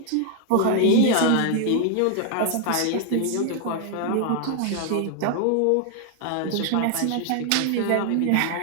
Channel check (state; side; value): different; both; correlation 0.00